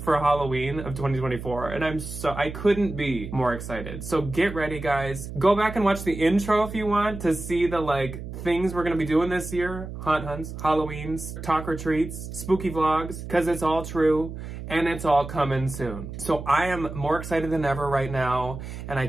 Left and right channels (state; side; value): noise; right; hum, 9 dB below the sound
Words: Halloween of 2024. And I couldn't be more excited. So get ready, guys. Go back and watch the intro if you want to see the like things we're going to be doing this year. Haunt hunts, Halloweens, talk or treats, spooky vlogs, because it's all true. And it's all coming soon. So I am more excited than ever right now, and I